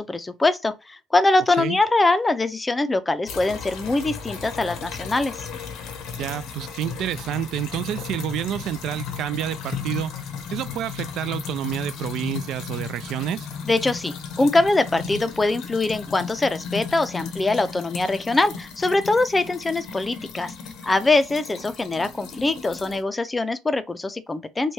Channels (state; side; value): normal; both; correlation 0.85